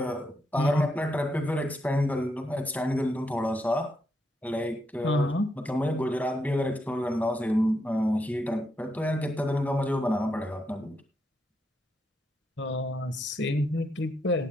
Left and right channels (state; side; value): normal; both; correlation 0.81